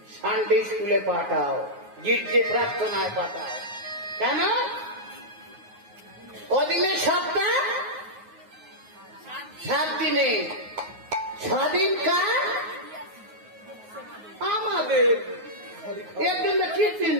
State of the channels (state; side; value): late; left; 9.4 ms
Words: সানডে স্কুলে পাঠাও, গির্জে প্রার্থনায় পাঠাও। কেন? ওদিনে সপ্তাহ 7 দিনে 6 দিন কার আমাদের। এর জন্য কি